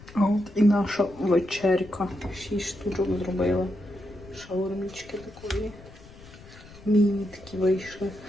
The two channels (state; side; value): noise; left; rumble, 20 dB below the sound